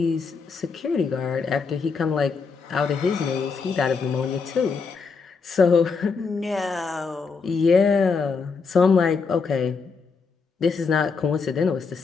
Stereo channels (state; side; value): quieter; right; 5.0 dB